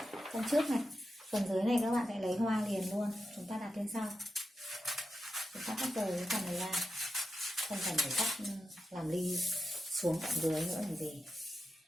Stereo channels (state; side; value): normal; both; correlation 0.89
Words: Phần trước này. Phần dưới này các bạn sẽ lấy hoa liền luôn. Chúng ta đặt lên sau. Chúng ta cắt rời cái phần này ra. Không cần phải cắt làm ly xuống tận dưới nữa làm gì.